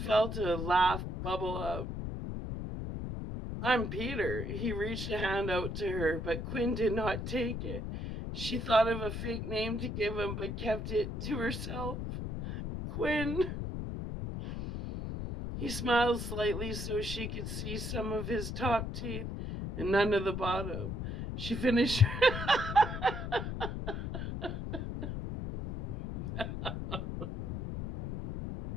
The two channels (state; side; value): noise; left; rumble, 5 dB below the sound